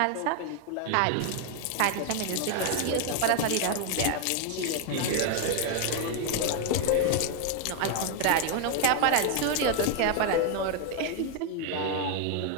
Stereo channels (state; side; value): different; both; correlation 0.00